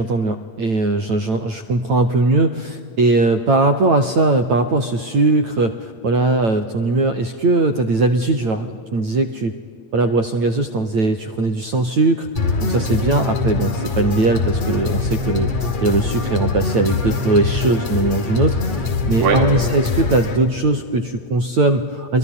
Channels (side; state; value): left; late; 9.0 ms